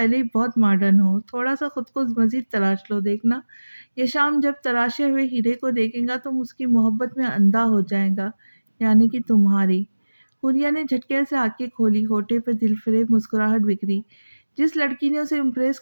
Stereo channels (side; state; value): both; inverted; correlation -1.00